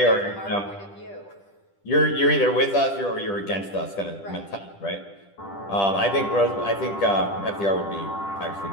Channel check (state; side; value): late; right; 10 ms